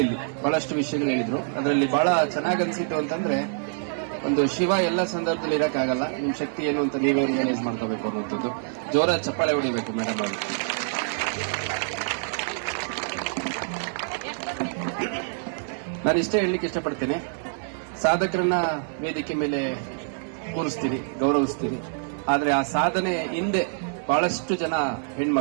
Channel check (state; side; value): silent; left; 57 dB below the other